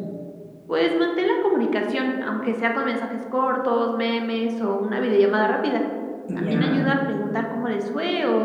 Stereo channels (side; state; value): both; identical; correlation 1.00